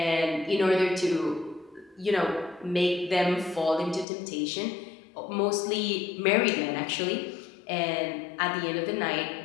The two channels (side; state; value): right; drops out; at 4.0 s